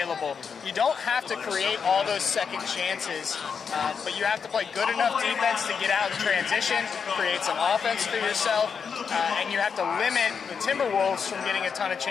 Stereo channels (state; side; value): quieter; right; 6.3 dB